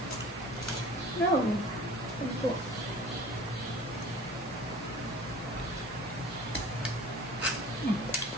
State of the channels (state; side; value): normal; both; correlation 0.44